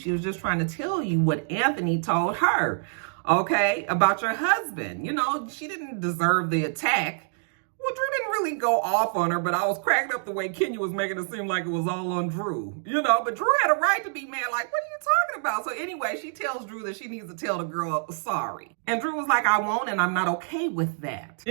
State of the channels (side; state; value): left; silent; digital silence